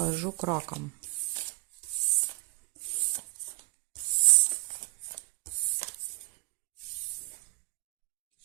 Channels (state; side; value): quieter; left; 26.0 dB